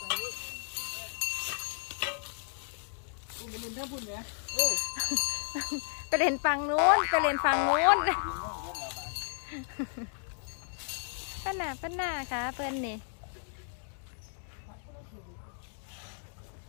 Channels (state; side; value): silent; right; digital silence